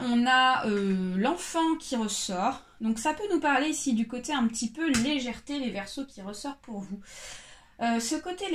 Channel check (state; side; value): identical; both; correlation 1.00